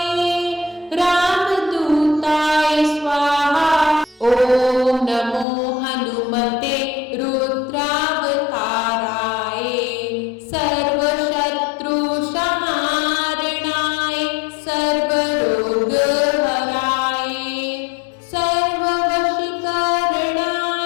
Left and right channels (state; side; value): drops out; right; at 5.5 s